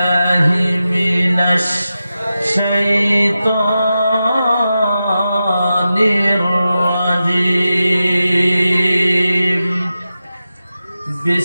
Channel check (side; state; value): both; inverted; correlation -0.92